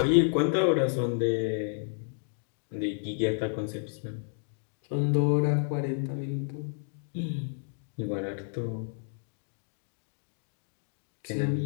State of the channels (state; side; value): silent; right; digital silence